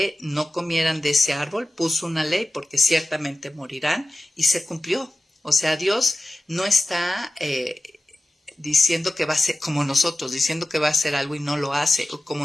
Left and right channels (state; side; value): normal; both; correlation 0.94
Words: no comieran de ese árbol, puso una ley porque ciertamente morirán y se cumplió. O sea, Dios no está diciendo que va a ser como nosotros, diciendo que va a hacer algo y no lo hace, o